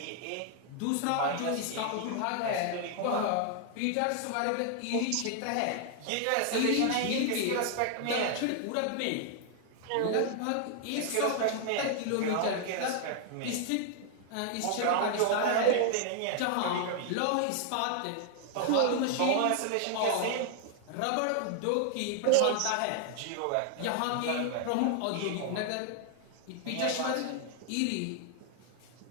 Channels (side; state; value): both; different; correlation 0.00